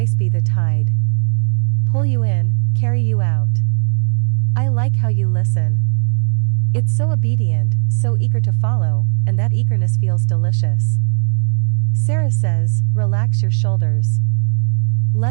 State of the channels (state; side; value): silent; left; digital silence